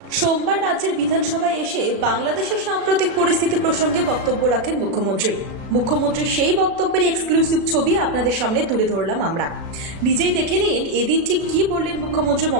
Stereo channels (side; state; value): left; late; 36 ms